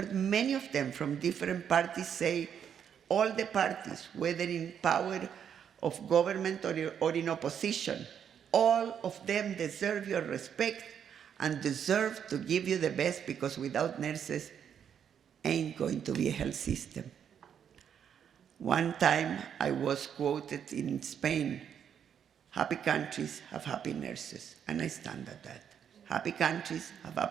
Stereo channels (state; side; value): quieter; left; 8.3 dB